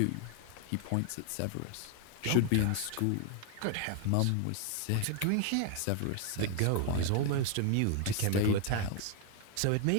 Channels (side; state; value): both; different; correlation 0.01